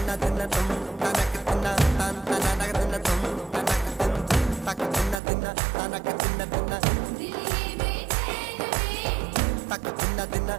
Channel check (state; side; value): drops out; left; at 5.2 s